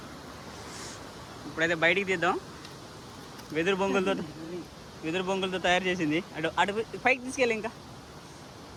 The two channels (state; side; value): identical; both; correlation 1.00